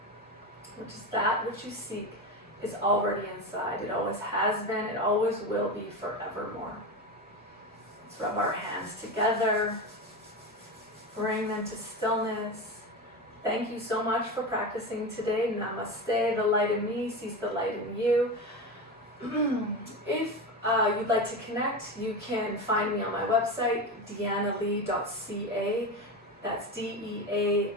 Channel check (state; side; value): normal; both; correlation 0.21